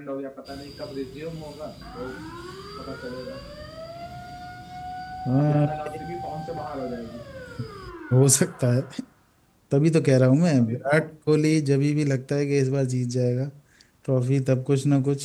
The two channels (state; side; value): identical; both; correlation 1.00